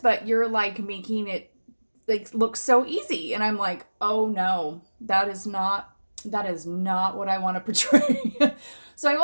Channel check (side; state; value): both; inverted; correlation -1.00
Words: you're like making it like look so easy." And I'm like, "Oh no, that is not what I want to portray." So I